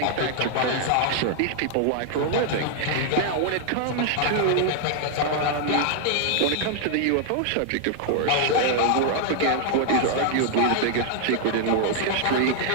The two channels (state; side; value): different; both; correlation 0.00